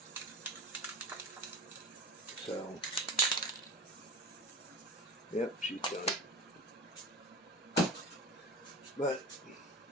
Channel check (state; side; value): normal; both; correlation 0.32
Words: So, yep, she's done it. But